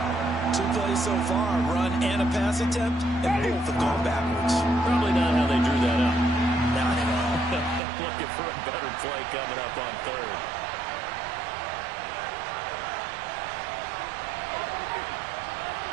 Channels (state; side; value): drops out; left; at 7.8 s